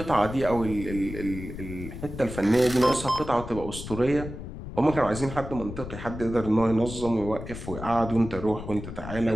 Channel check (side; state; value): left; noise; rumble, 10 dB below the sound